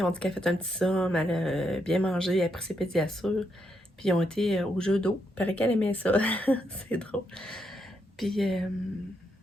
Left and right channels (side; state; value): both; normal; correlation 0.79